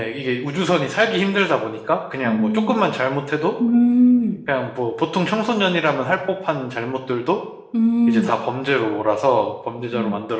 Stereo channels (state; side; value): identical; both; correlation 1.00